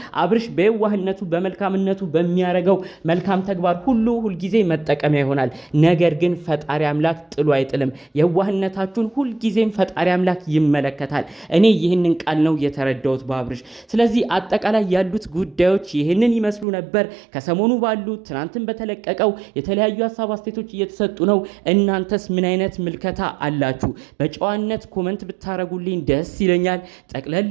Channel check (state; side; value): drops out; left; at 16.7 s